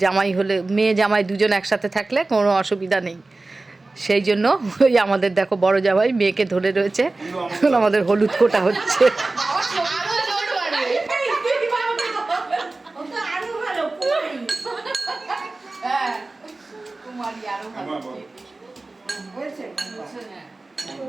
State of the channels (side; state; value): left; quieter; 3.2 dB